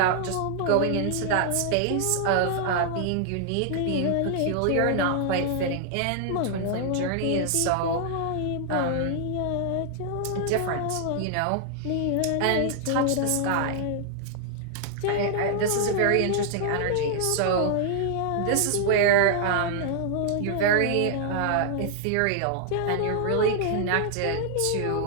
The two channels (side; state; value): both; different; correlation -0.01